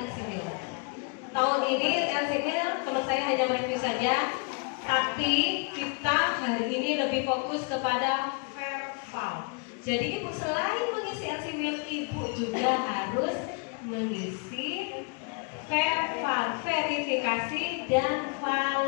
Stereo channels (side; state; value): right; quieter; 34.8 dB